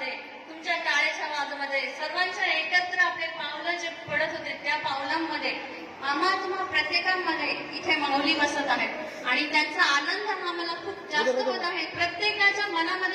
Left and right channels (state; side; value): identical; both; correlation 1.00